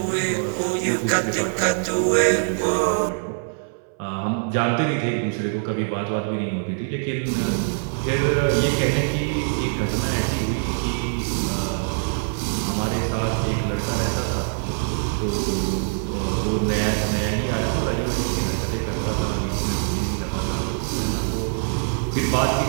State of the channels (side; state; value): left; silent; 61 dB below the other